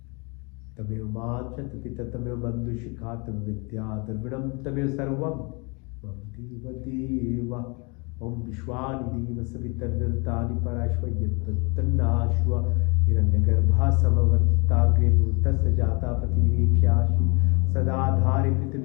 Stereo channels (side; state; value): right; quieter; 30.8 dB